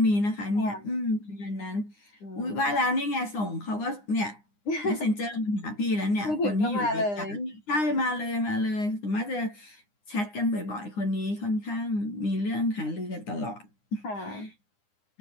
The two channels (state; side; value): late; right; 9.8 ms